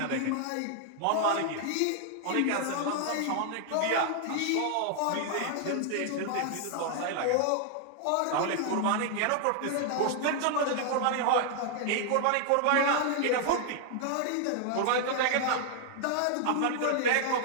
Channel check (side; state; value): both; different; correlation 0.00